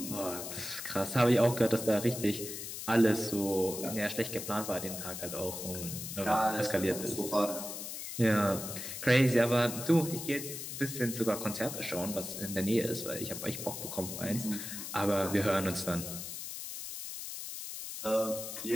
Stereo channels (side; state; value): left; noise; hiss, 7 dB below the sound